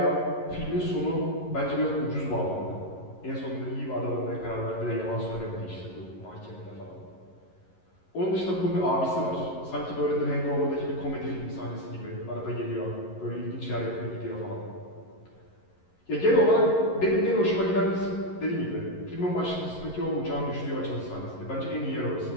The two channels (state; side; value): late; right; 11 ms